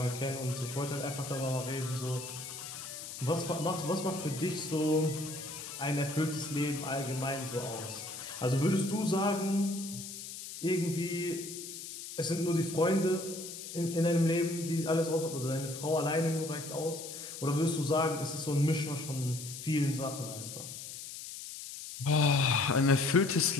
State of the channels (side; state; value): left; noise; hiss, 10 dB below the sound